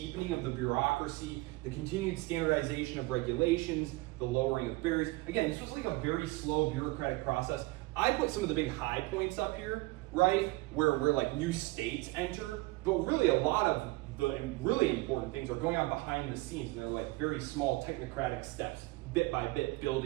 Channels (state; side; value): quieter; left; 21.7 dB